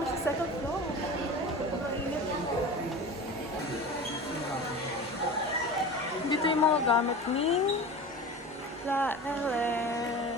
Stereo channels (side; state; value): both; normal; correlation 0.33